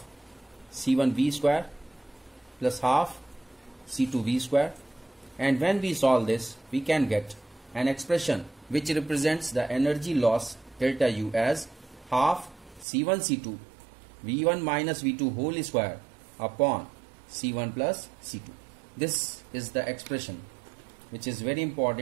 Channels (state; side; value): drops out; left; at 12.9 s